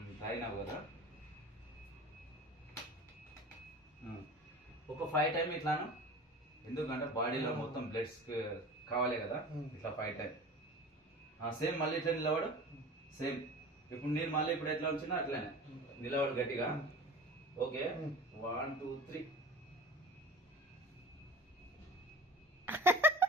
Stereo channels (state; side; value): normal; both; correlation 0.37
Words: తాగినావు కదా, ఒక 5 టైం ఇట్లాను, ఎందుకంటే బాడీలో మొత్తం బ్లడ్స్ కావాలి కదా, ఇట్లా 5 టైం. సేమ్ మళ్ళీ ఇట్లా నిలబడు, సేమ్. ఇప్పుడు నేను మళ్ళీ ఇప్పుడు ఎట్లా వచ్చినా అట్లానే నిలబడు గట్టిగా. ఓకే, 1 2 3.